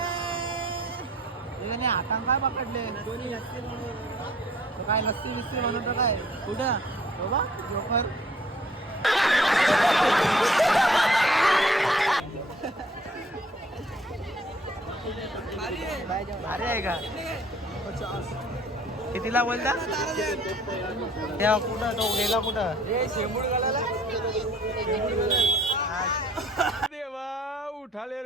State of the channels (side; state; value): both; normal; correlation 0.56